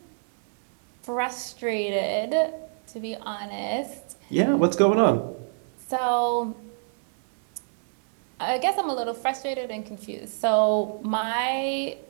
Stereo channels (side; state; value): left; silent; 61 dB below the other